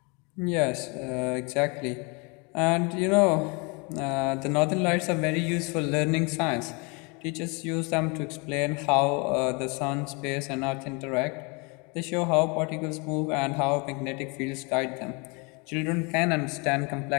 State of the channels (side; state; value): right; quieter; 30.8 dB